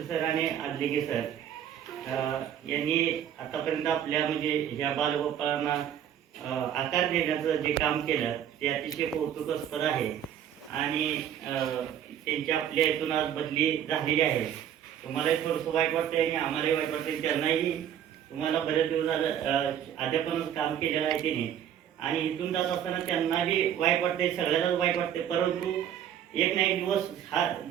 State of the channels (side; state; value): left; quieter; 9.8 dB